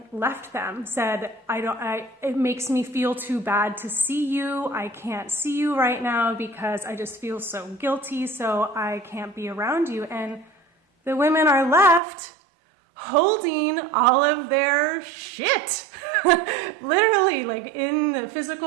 left them, said, it makes me feel too bad to see you, I can't see you right now because I just feel so guilty, so I can't be around you. And the women are left holding all of their shit, literally, like in the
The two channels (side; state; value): left; drops out; at 12.0 s